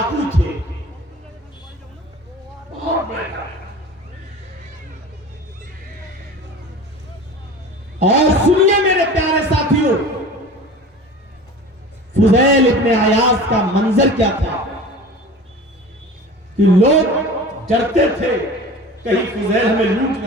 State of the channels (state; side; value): normal; both; correlation 0.38